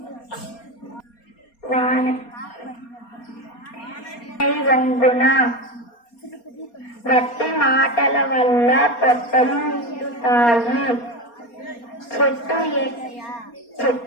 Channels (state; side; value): late; right; 4.3 ms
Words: వంగున. గట్టి మాటల వల్ల పొట్టలు నిండుతాయి.